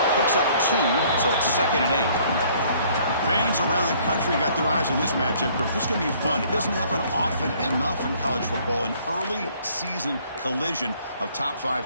Picks up 2, so it's 2nd and 8. Fans around the country got their eyes on this matchup. This is going to be fun. It doesn't happen often enough in college football, an early season collision of top 5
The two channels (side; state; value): both; inverted; correlation -0.59